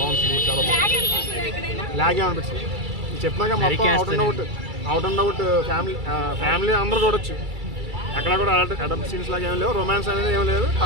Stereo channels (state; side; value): late; left; 2.3 ms